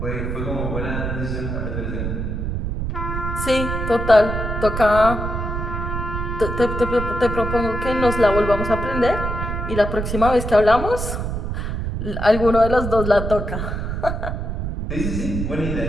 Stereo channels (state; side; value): noise; right; rumble, 3 dB below the sound